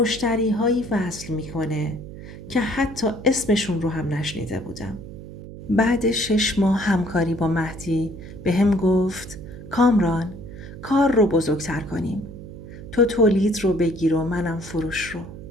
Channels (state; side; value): noise; right; hum, 13 dB below the sound